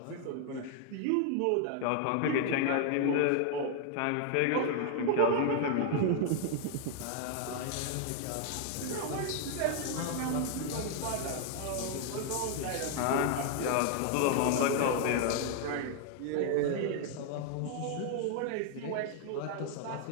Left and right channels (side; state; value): both; different; correlation 0.00